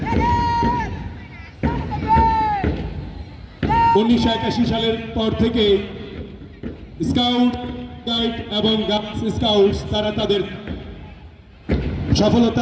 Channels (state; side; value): identical; both; correlation 1.00